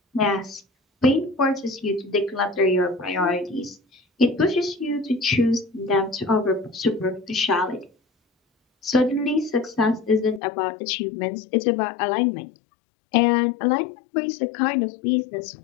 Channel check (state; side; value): drops out; right; at 10.4 s